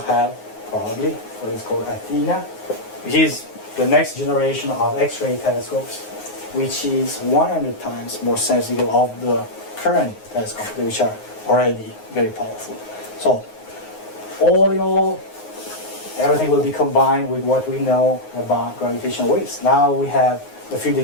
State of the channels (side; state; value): right; late; 9.5 ms